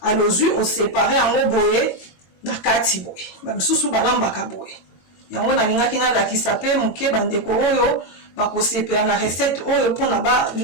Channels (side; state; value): right; late; 22 ms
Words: alozwi osepare yango boye na kati boye bamisusu balambaka boye yango nalingaki nalakisa mpe moke bandeko oyo bakosepela na recette oyo mpona